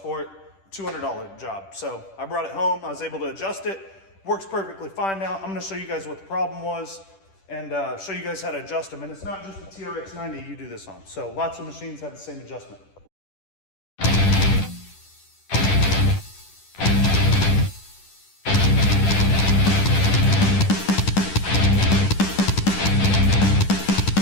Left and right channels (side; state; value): right; late; 10 ms